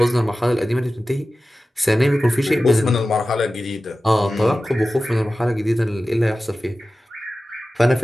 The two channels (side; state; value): both; normal; correlation 0.95